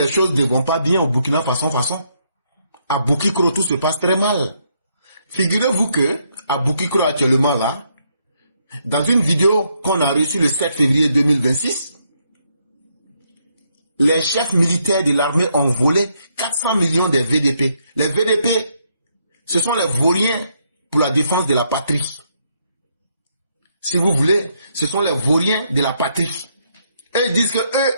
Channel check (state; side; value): inverted; both; correlation -0.75